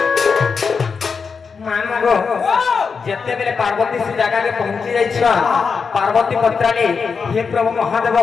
যেতেবেলে পার্বতী সে জায়গাকে পৌঁছি যাইছ পার্বতী পত্রালি হে প্রভু মহাদেব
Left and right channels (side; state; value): right; quieter; 5.5 dB